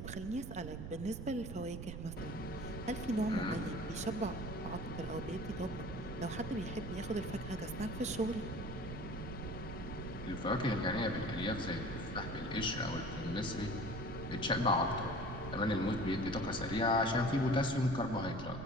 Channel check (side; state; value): right; noise; rumble, 7 dB below the sound